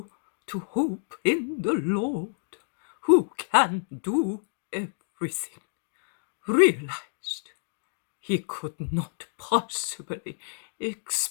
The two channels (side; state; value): right; silent; digital silence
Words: to hope in the Lord, who can do everything, realized he could not possibly